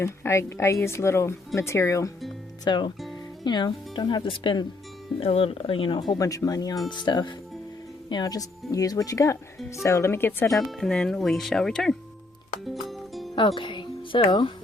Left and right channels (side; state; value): right; quieter; 3.1 dB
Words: I use little material, so, you know, don't have to spend a little, you know, a whole bunch of money on stuff. You know, just use what you got. So let me get set up, and then we shall return. Okay, so